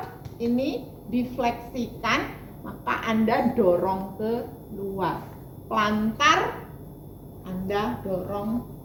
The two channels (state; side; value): identical; both; correlation 1.00